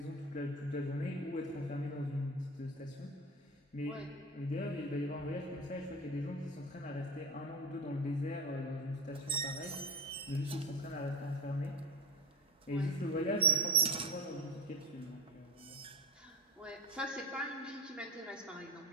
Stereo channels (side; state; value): both; normal; correlation 0.25